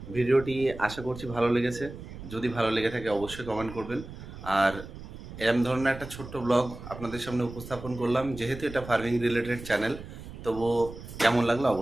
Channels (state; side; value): noise; right; rumble, 13 dB below the sound